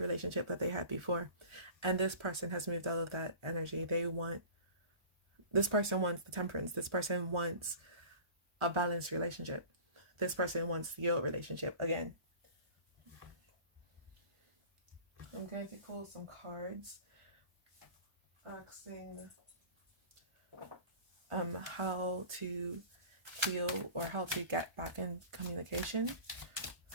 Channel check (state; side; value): late; left; 1.4 ms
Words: relationship that they had before. And this person has moved out of that energy. This person wants the temperance. This person wants a balanced relationship. This person wants your relationship again. I'm going to pull some cards asking how to heal or how to get back in communication